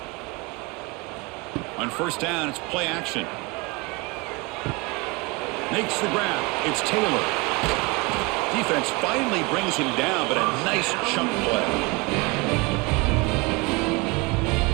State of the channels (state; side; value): quieter; left; 26.0 dB